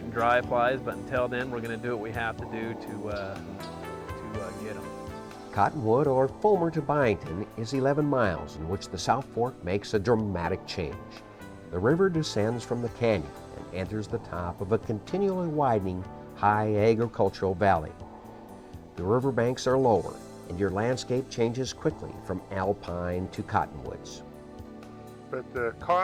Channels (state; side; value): identical; both; correlation 1.00